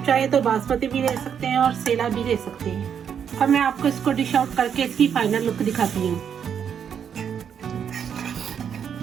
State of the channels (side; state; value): left; quieter; 7.9 dB